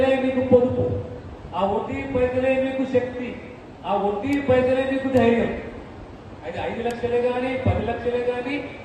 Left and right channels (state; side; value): identical; both; correlation 1.00